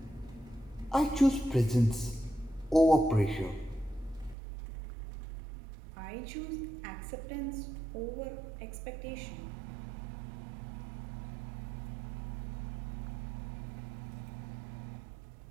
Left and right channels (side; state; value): left; drops out; at 4.4 s